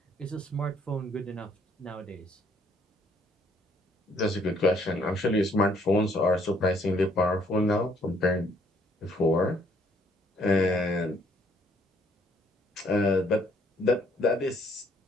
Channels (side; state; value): both; normal; correlation 0.65